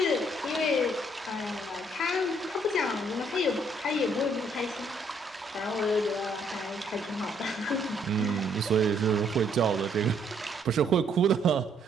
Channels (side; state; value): both; normal; correlation 0.68